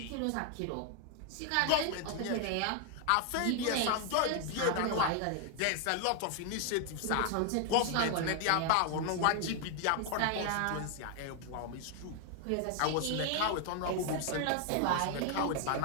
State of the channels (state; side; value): different; both; correlation 0.00